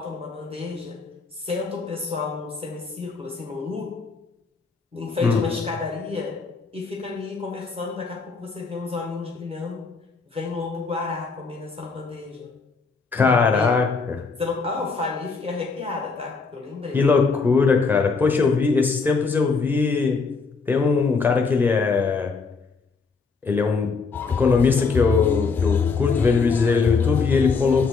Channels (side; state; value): right; quieter; 4.7 dB